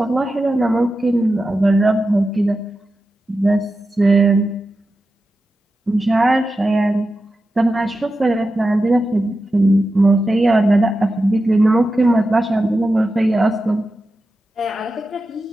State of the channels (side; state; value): both; normal; correlation 0.91